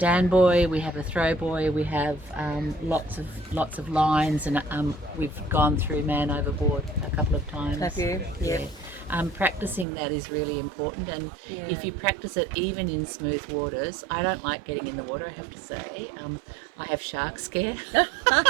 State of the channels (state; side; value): drops out; left; at 9.9 s